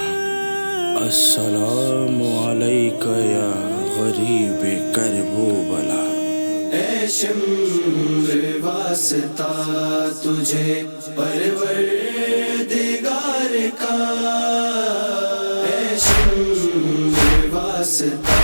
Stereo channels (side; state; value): both; inverted; correlation -1.00